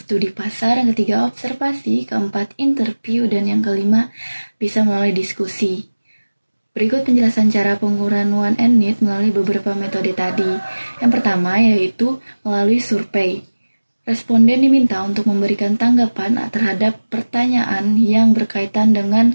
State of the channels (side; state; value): both; inverted; correlation -1.00